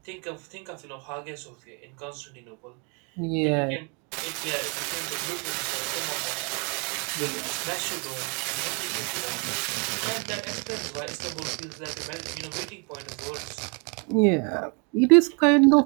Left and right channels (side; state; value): left; quieter; 34.6 dB